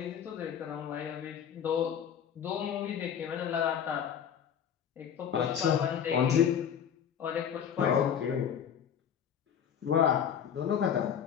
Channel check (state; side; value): quieter; right; 8.4 dB